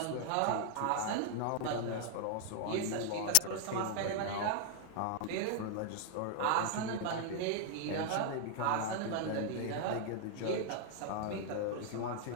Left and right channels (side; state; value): both; different; correlation 0.00